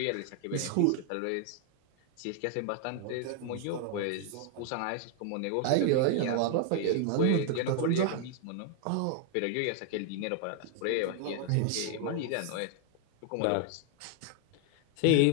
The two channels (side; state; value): both; different; correlation 0.00